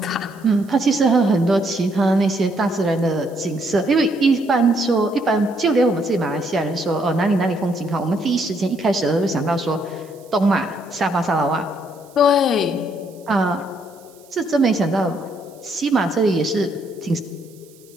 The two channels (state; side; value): noise; right; hiss, 27 dB below the sound